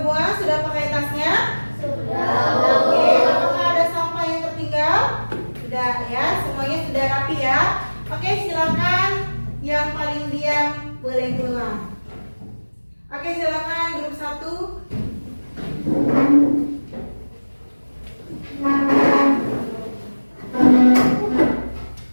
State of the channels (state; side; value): inverted; both; correlation -1.00